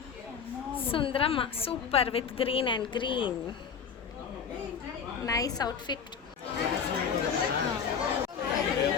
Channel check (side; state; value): right; quieter; 6.7 dB